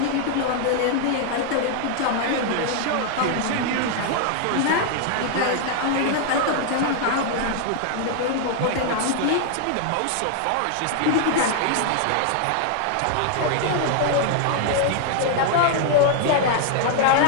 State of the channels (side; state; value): both; different; correlation 0.00